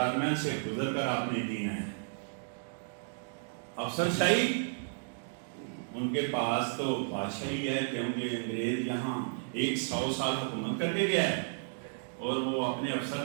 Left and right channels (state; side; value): silent; left; digital silence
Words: سے گزر کر آپ نے جینا ہے. افسر شاہی ان کے پاس تو بادشاہی ہے کیونکہ انگریز یہاں 100 سال حکومت کر کے گیا ہے اور وہ اپنے افسر